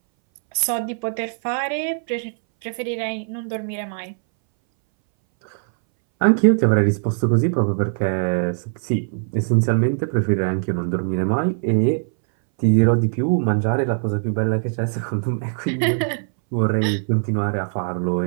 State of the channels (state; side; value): silent; left; 62 dB below the other